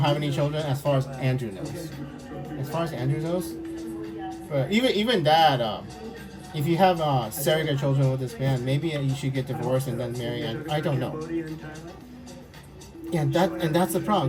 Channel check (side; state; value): both; identical; correlation 1.00